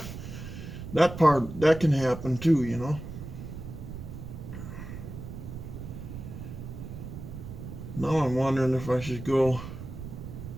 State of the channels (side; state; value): right; noise; rumble, 10 dB below the sound